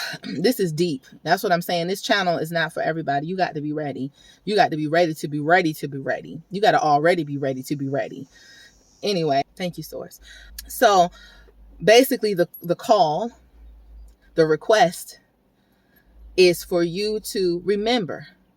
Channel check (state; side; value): identical; both; correlation 1.00